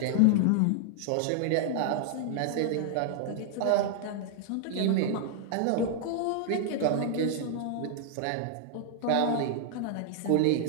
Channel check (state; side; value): different; both; correlation 0.00